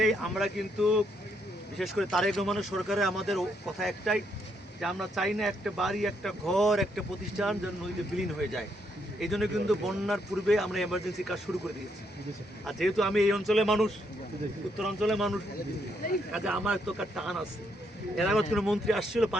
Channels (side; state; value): both; normal; correlation 0.75